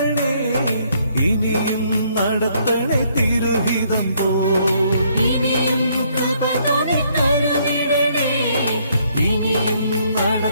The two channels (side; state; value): both; inverted; correlation -0.68